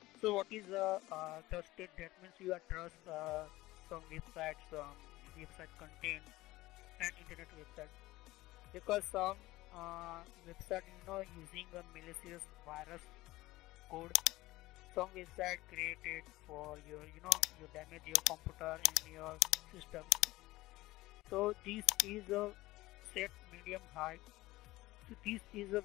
So what is trusted, that means you are trust some websites, some website content and internet website, because some website using a malicious virus code, some website created for your you damage your computer and your systems. So this is a set medium high. So this is a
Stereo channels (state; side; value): quieter; right; 18.3 dB